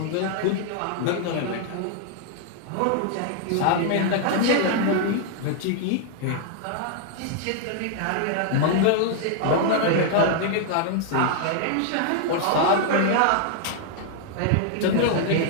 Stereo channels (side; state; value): both; different; correlation 0.00